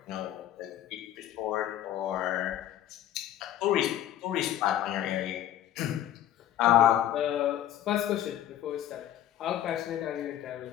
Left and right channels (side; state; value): right; quieter; 11.9 dB